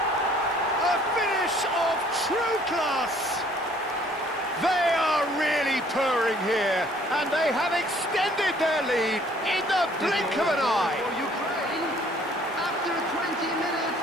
A finish of true class! They are really purring here, and they have extended their lead in the blink of an eye. After 20 minutes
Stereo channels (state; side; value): normal; both; correlation 0.58